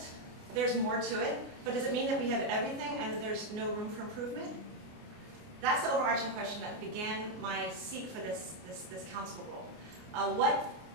There's more to it. But does it mean that we have everything and there's no room for improvement? That's the overarching question that began my seek for this council role. What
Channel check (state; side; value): late; left; 29 ms